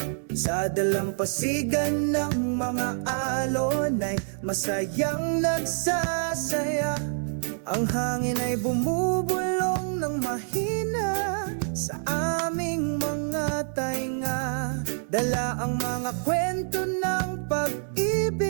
Sa dalampasigan ng mga alon ay masayang nagsasaya. Ang hangin ay bumubulong ng mahina sa aming mga tainga. Dala ang mga kwento ng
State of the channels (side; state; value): left; silent; 60 dB below the other